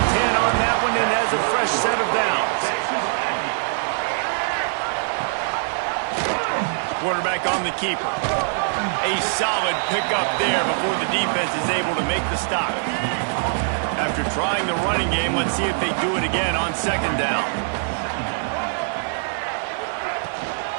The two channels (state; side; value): silent; left; digital silence